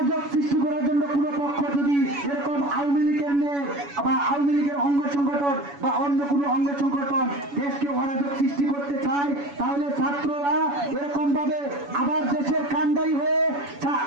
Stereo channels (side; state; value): left; late; 7.1 ms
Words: সৃষ্টি করার জন্য কোনো পক্ষ যদি এরকম আওয়ামী লীগের নেই বা আওয়ামী লীগের অঙ্গ সংগঠন বা অন্য কোনো অঙ্গ সংগঠন দেশকে অরাজক সৃষ্টি করতে চায়, তাহলে ছাত্ররা এরকম ভাবে আবার দেশের